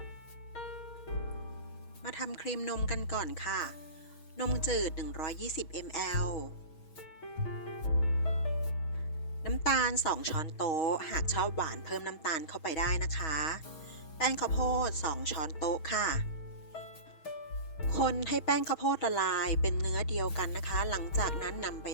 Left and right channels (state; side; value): late; right; 6.3 ms